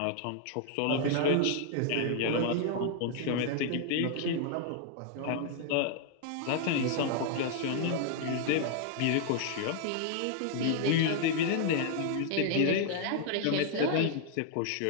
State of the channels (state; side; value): different; both; correlation 0.00